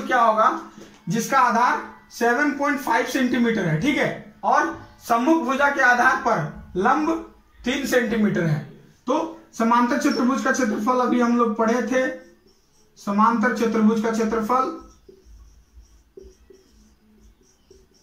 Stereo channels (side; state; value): both; identical; correlation 1.00